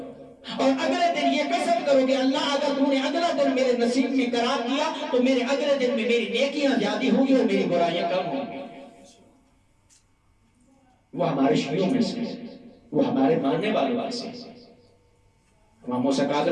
اور اگلے دن یہ قسم کرو کہ اللہ اگر تو نے اگلا دن میرے نصیب میں قرار دیا تو میرے اگلے دن میں میری نیکیاں زیادہ ہوں گی اور میری برائیاں کم ہوں گی۔ وہ ہمارے شیعوں میں سے، وہ ہمارے ماننے والوں سے۔ امام موسیٰ کاظم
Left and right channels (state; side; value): identical; both; correlation 1.00